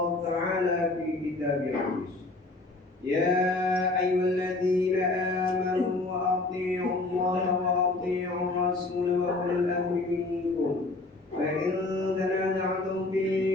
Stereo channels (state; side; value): quieter; right; 3.2 dB